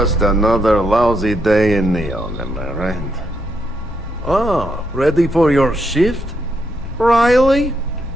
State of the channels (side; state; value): both; normal; correlation 0.79